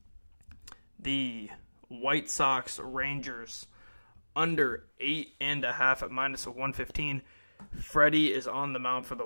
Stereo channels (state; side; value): inverted; both; correlation -1.00